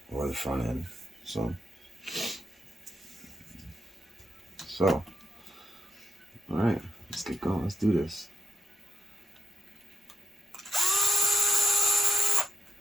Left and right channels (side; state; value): both; normal; correlation 0.81